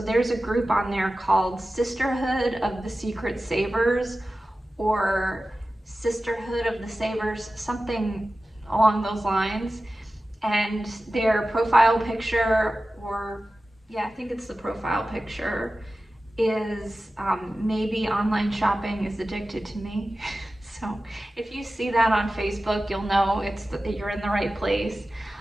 a group on there called Sisterhood of the Secret Savers, or Sisterhood of the Savers, something along those lines. And their profile picture, or yeah, I think it's the profile picture, is maybe online shopping is addicted to me. So if you see that on Facebook, you'll know you're in the right place.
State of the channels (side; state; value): both; normal; correlation 0.95